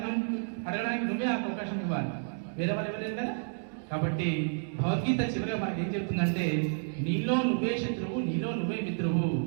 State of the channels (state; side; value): silent; left; digital silence